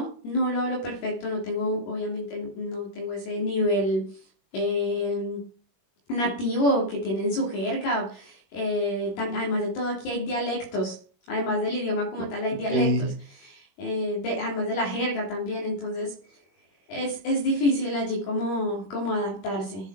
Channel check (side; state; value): right; late; 21 ms